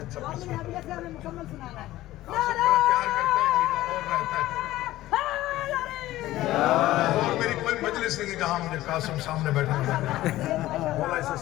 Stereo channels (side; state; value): right; quieter; 15.8 dB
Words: والی حبیبہ سے ہمیں مکمل سنانا ہے پیار کرتا ہے اور رہتا ہے اور میری کوئی مجلس نہیں ہے جہاں مجھے قاسم سامنے بیٹھا مولا اسے